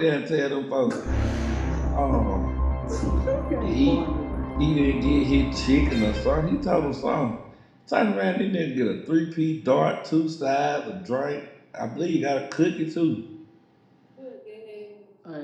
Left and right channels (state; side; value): identical; both; correlation 1.00